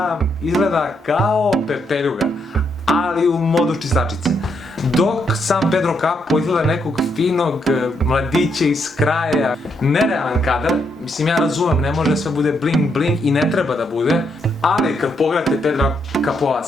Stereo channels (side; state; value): both; normal; correlation 0.77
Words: izgleda kao pepeljuga, ali u modu čistačice. Dok sam Pedro Capó izgleda nekog finog mladića iz kraja. Nerealan kadar, mislim, ja razumem, ne može sve bude bling bling i ne treba da bude, ali kad pogledate Pedra Capóa